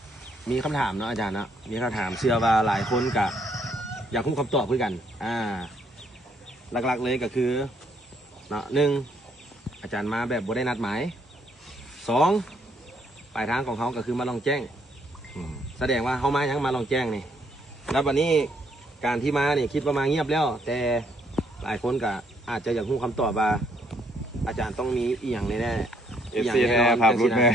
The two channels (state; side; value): normal; both; correlation 0.70